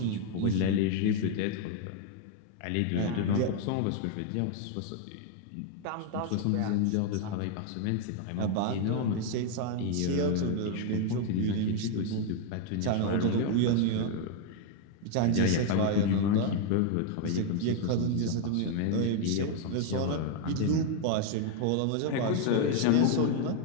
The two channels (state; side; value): different; both; correlation 0.00